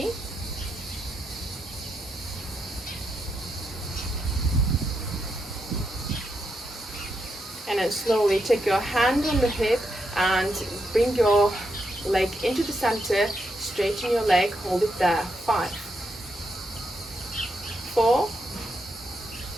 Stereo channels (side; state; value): both; normal; correlation 0.82